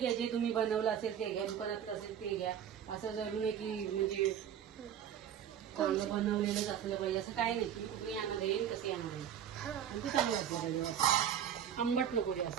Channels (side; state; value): left; quieter; 9.4 dB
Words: जे तुम्ही बनवलं असेल ते घ्या, दुकानातलं असेल ते घ्या. असं जरूर नाही की म्हणजे चांगलं बनवलेलंच असलं पाहिजे असं काय नाही. तुम्ही कुठे आणणार येईल तसे आणणार येईल आणि ते चांगलं असलं पाहिजे, आंबट नको